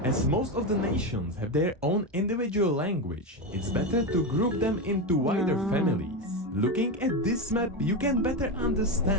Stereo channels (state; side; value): normal; both; correlation 0.14